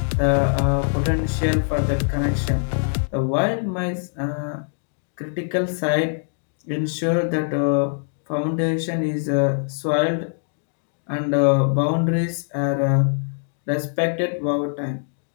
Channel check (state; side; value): silent; right; digital silence